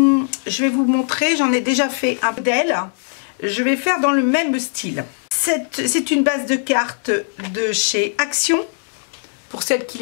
vais vous montrer, j'en ai déjà fait un modèle, je vais faire dans le même style. C'est une base de cartes de chez Action, pour celles qui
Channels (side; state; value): right; silent; 66 dB below the other